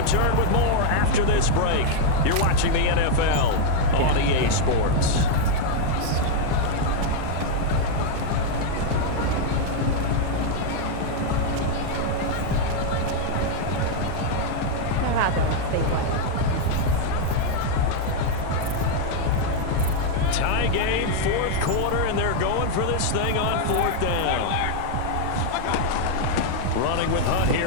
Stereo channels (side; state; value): both; different; correlation 0.00